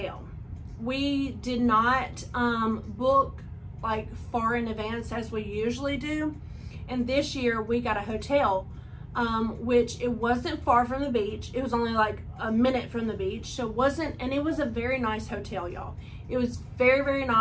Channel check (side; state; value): both; identical; correlation 1.00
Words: We did not book like far in advance as we usually do. And this year we got a hotel, which it wasn't far from the beach. It was only like a minute from the beach. So it wasn't, and it was a very nice hotel, y'all. It was very, very